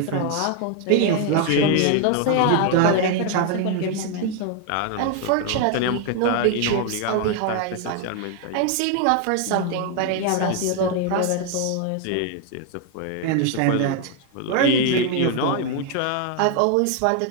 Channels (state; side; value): different; both; correlation 0.01